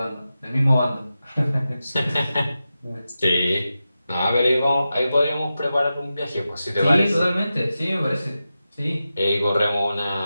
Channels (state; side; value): inverted; both; correlation -0.92